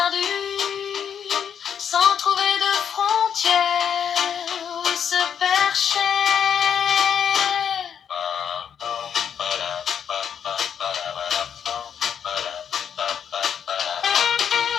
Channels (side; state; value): right; quieter; 8.1 dB